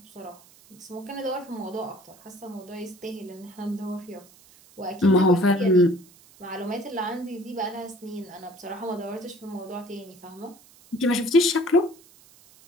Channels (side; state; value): right; noise; hiss, 25 dB below the sound